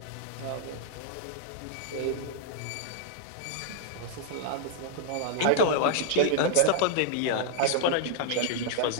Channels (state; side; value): different; both; correlation 0.00